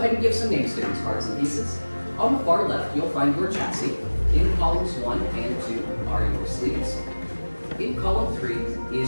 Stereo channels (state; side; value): inverted; both; correlation -1.00